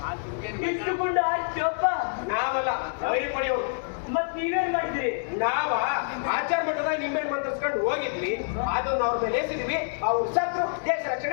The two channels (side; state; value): right; silent; 60 dB below the other